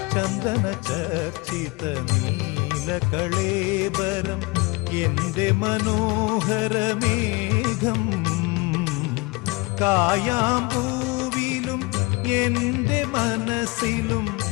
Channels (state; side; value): quieter; right; 25.4 dB